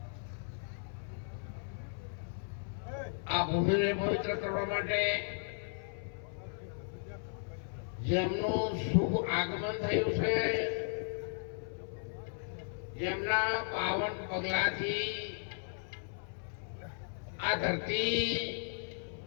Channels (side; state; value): right; silent; 54 dB below the other